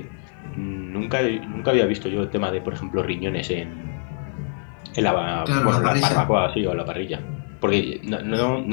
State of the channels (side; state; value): right; silent; 63 dB below the other